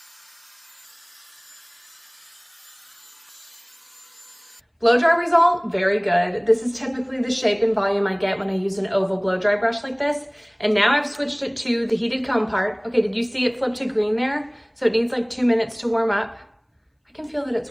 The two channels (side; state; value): both; identical; correlation 1.00